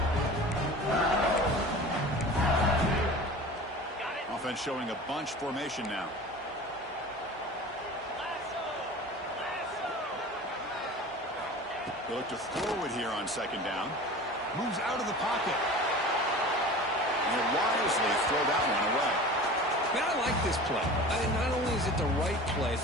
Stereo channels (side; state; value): both; normal; correlation 0.37